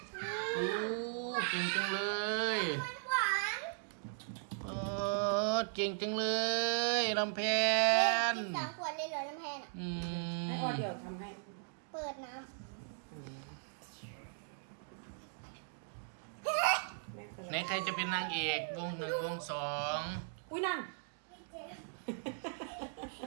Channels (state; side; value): silent; left; digital silence